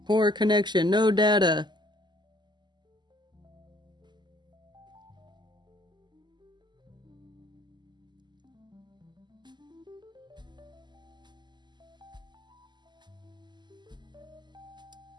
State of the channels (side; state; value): left; late; 0.21 ms